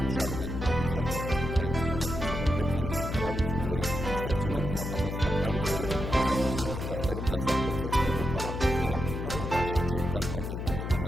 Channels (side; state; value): left; noise; hum, 5 dB below the sound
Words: շարունակում են մի շարք մշակութային նշանակության օբյեկտների շինարարությունները, ստեղծում են համապատասխան պայմաններ մշակութային օջախներում դասապրոցեսներն ու պարապմունքները հավուր պատշաճի կազմակերպելու